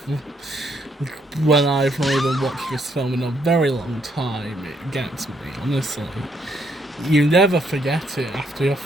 When I've not even watched this film in a very long time, it gets me, honestly. You never forget it after your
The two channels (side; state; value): both; normal; correlation 0.72